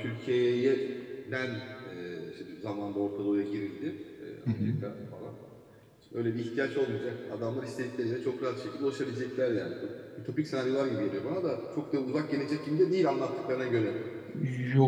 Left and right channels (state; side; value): identical; both; correlation 1.00